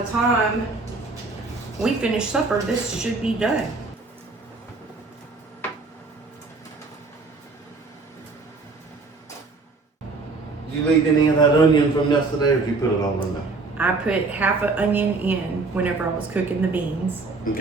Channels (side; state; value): left; quieter; 3.8 dB